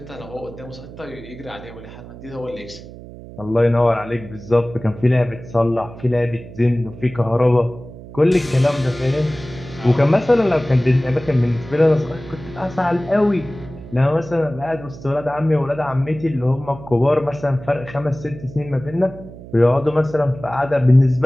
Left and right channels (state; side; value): noise; right; hum, 16 dB below the sound